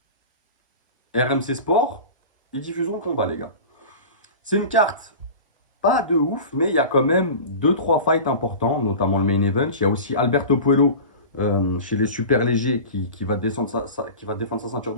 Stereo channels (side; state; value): both; inverted; correlation -0.33